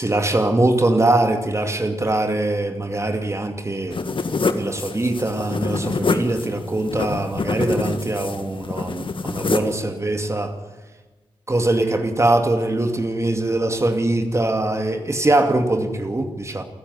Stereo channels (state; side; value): normal; both; correlation 0.83